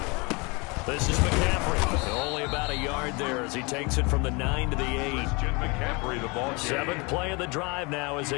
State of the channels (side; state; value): right; quieter; 28.5 dB